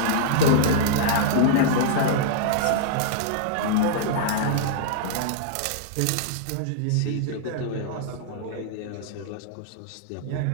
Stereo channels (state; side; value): different; both; correlation -0.01